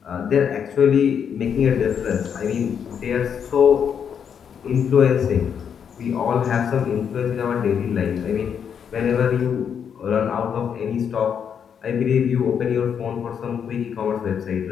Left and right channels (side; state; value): right; quieter; 7.7 dB